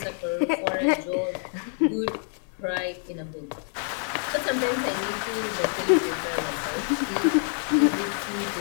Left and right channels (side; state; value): right; silent; 59 dB below the other